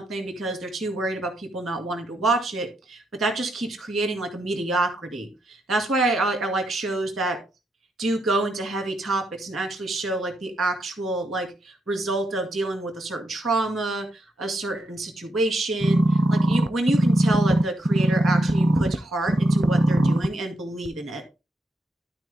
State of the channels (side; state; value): both; normal; correlation 0.81